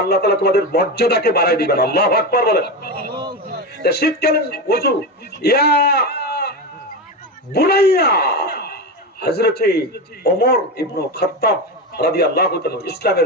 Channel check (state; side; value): normal; both; correlation 0.18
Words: আল্লাহ তাআলা তোমাদের মর্যাদাকে বাড়ায় দিবেন। আল্লাহু আকবার বলেন। শীতকালীন ওযু, ইয়া বুনাইয়া, হযরত ওমর ইবনে খাত্তাব রাদিয়াল্লাহু তাআলা